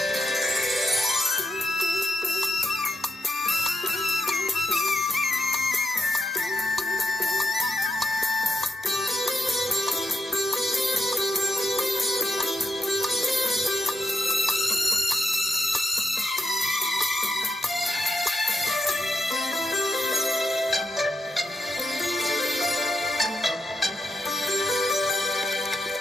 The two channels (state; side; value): normal; both; correlation 0.83